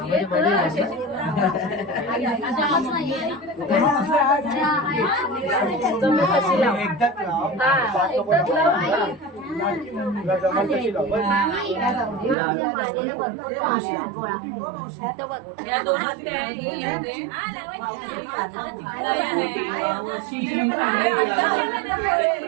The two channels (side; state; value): left; drops out; at 12.4 s